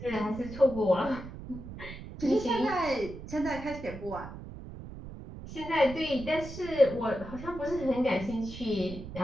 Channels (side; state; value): right; noise; rumble, 12 dB below the sound